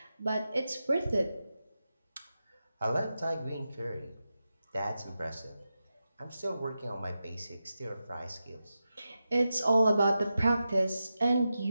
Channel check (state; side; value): inverted; both; correlation -0.91